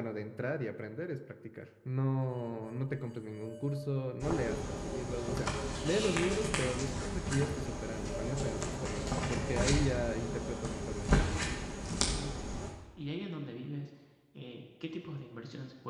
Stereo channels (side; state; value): both; identical; correlation 1.00